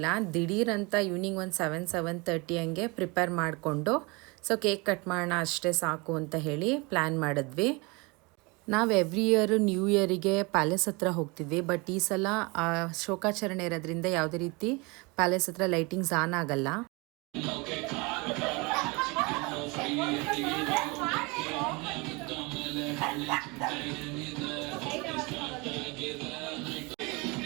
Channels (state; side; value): quieter; left; 27.2 dB